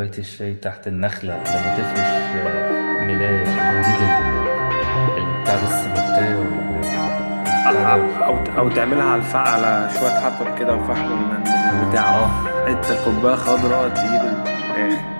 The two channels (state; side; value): inverted; both; correlation -1.00